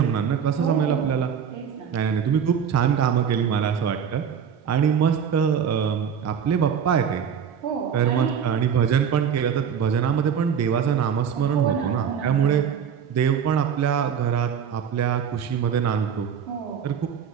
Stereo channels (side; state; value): left; quieter; 7.7 dB